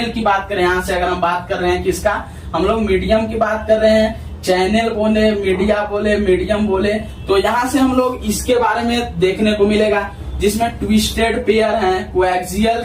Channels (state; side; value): identical; both; correlation 1.00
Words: की बात कर रहे हैं। यहाँ से अगर हम बात कर रहे हैं किसका, हम लोग मीडियम की बात कर रहे हैं। चैनल बोले, मीडिया बोले, मीडियम बोले, तो यहाँ से हम लोग इसके बारे में देखने को मिलेगा, जिसमें ट्विस्टेड पेयर हैं, कोएक्सियल